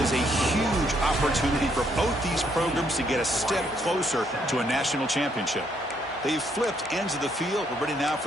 a huge opportunity for both these programs to get a step closer to a national championship. They've flipped ends of the field. We're ready now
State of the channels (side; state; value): both; normal; correlation 0.72